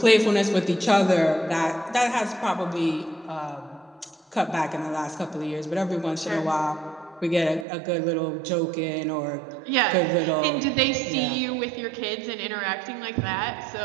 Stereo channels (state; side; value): drops out; left; at 7.7 s